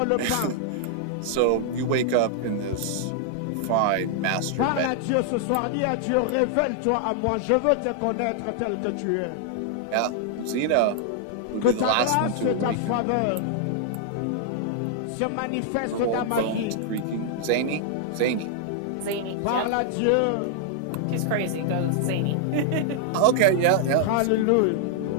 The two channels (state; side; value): different; both; correlation -0.01